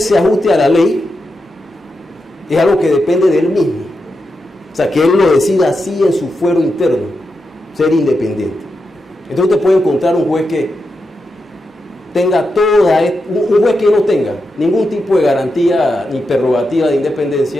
se ajuste a la ley es algo que depende de él mismo. O sea, que él lo decida así en su fuero interno, ser independiente. Entonces usted puede encontrar un juez que tenga un juez que no tenga ningún tipo de garantía ni prerrogativa de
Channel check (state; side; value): normal; both; correlation 0.87